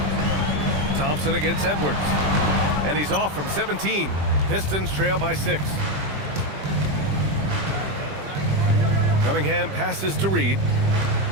Thompson against Edwards. And he's off from 17. Pistons trail by 6. Cunningham passes to Reed.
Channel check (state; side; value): late; left; 20 ms